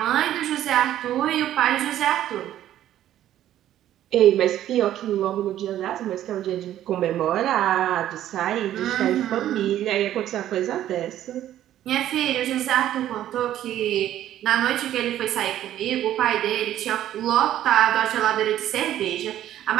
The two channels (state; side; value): quieter; left; 12.2 dB